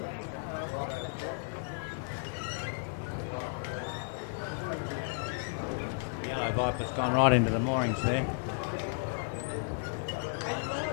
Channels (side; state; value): right; silent; digital silence